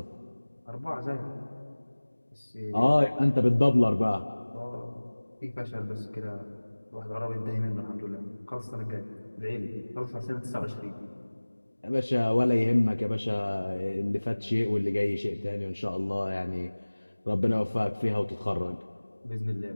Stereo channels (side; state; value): both; inverted; correlation -1.00